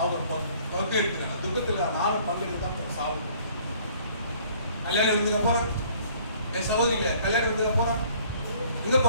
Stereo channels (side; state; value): both; inverted; correlation -0.57